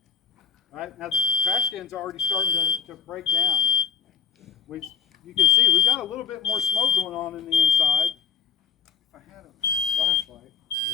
Right, now the trash can's already starting to break down. You can see we've got a little bit more smoke going on in the inside. If I had a flashlight.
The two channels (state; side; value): quieter; right; 6.4 dB